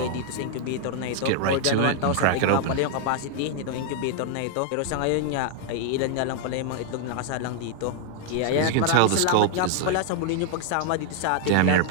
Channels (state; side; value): different; both; correlation 0.00